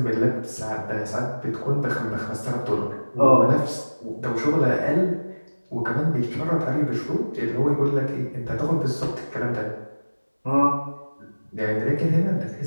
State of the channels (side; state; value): both; inverted; correlation -1.00